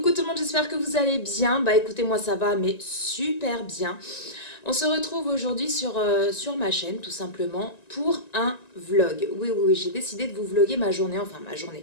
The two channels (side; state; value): right; late; 1.9 ms